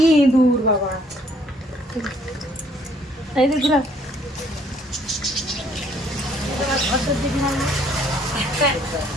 দূর বাবা। এই যে ঘুরা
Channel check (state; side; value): normal; both; correlation 0.63